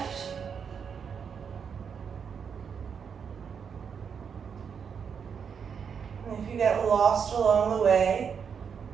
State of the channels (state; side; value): quieter; left; 6.8 dB